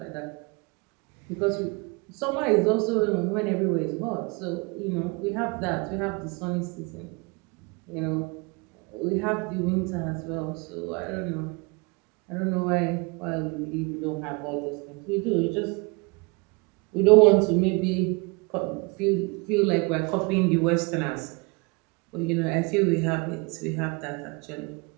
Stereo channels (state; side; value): quieter; left; 29.3 dB